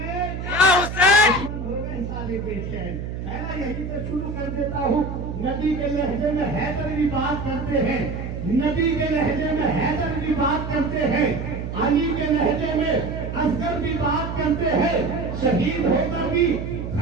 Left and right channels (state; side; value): noise; right; hum, 6 dB below the sound